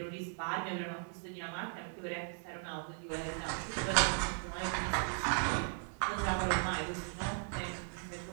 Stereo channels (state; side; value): silent; left; 53 dB below the other